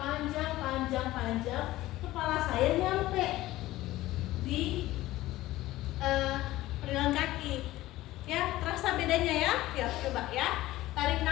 kepala saya nyampe di pergelangan kaki. Ya, terasa bedanya ya? Ya, coba ya. Tarik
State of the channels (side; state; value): right; quieter; 16.6 dB